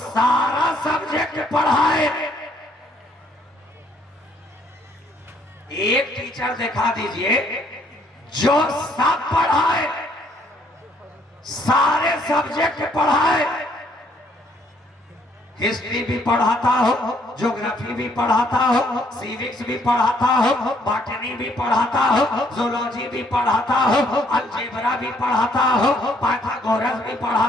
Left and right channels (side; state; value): both; normal; correlation 0.66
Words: सब्जेक्ट पढ़ाए। एक टीचर दिखा दीजिए जो सब पढ़ाए, सारे सब्जेक्ट पढ़ाए। हिस्ट्री भी पढ़ाता हो, ज्योग्राफी भी पढ़ाता हो, सिविक्स भी पढ़ाता हो, बॉटनी भी पढ़ाता हो, जूलॉजी भी पढ़ाता हो, अलजेब्रा भी पढ़ाता हो, पाइथागोरस भी